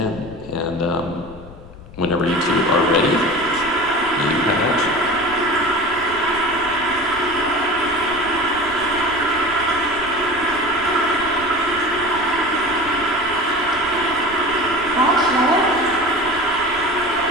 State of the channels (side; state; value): left; noise; rumble, 18 dB below the sound